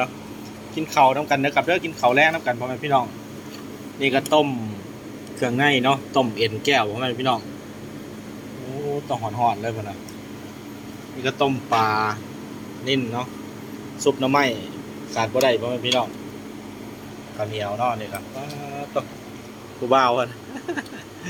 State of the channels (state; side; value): identical; both; correlation 1.00